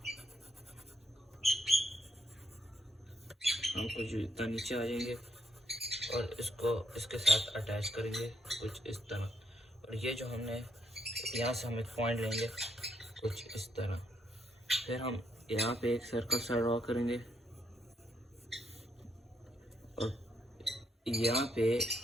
हम कुछ इतना नीचे आ जाएंगे और इसको इसके साथ अटैच करेंगे कुछ इस तरह। और ये जो हमने यहाँ से हम एक पॉइंट लेंगे कुछ इस तरह। फिर हम यहाँ पे एक सर्कल सा ड्रॉ करेंगे और यहाँ पे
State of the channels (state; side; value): normal; both; correlation 0.76